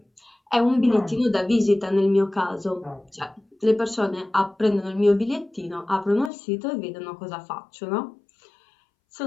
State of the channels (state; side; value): drops out; right; at 6.3 s